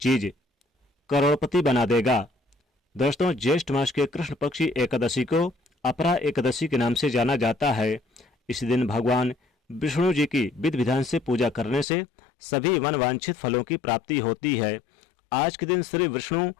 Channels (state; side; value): drops out; right; at 11.9 s